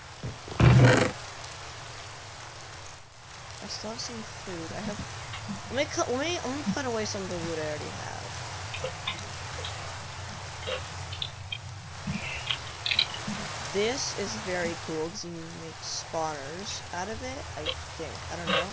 I still have some food. I have. Let me put away some of the food I already have. This is very cool because you can make spawners out of it. I think. I don't know.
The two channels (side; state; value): both; identical; correlation 1.00